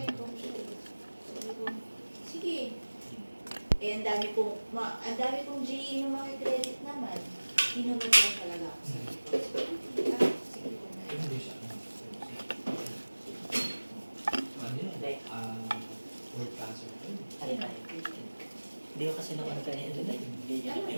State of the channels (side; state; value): both; inverted; correlation -1.00